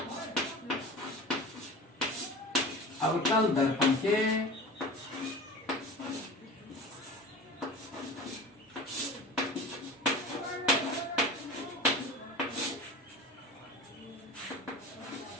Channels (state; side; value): normal; both; correlation 0.35